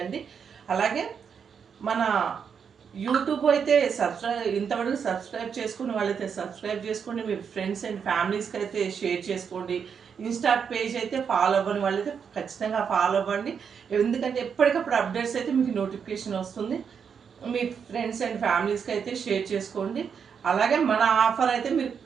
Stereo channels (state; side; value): quieter; left; 6.8 dB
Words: అలాగే మన యూట్యూబ్ అయితే ఇంతవరకు సబ్స్క్రైబ్ చేసుకుని వాళ్ళైతే సబ్స్క్రైబ్ చేసుకోండి. మీ ఫ్రెండ్స్ అండ్ ఫ్యామిలీస్కి అయితే షేర్ చేసుకోండి. ఇన్స్టా పేజ్ అయితే ఫాలో అవ్వని వాళ్ళైతే ఖచ్చితంగా ఫాలో అవ్వండి. ఎందుకంటే ఎప్పటికప్పుడు అప్డేట్స్ అయితే మీకు నోటిఫికేషన్ వస్తుంది. మీ ఫ్రెండ్స్ అండ్ ఫ్యామిలీస్కి అయితే షేర్ చేసుకోండి. అలాగే మన ఆఫర్ అయితే మీరు